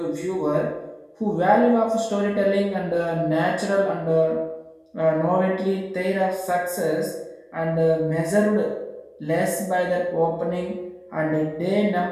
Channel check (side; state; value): both; identical; correlation 1.00